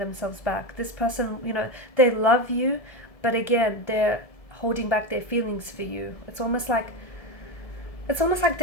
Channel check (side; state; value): right; late; 1.7 ms